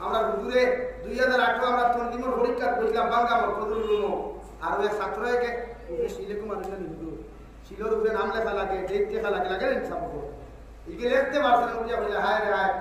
আমরা হুজুরে 2008 আমরা তন্দিমর পরীক্ষা করেছিলাম বাংলামর ফজলুল আর ওই ছাত্রকে শিলেকুম আনন্দ নিদু শিলোর উপরে নাম লেখা লাগে ডেট লেখা লাগে লাগে ইনসাফ করে ইকে লিখতে পারছেন বুঝিয়া বলে হায় রে হায়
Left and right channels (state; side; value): identical; both; correlation 1.00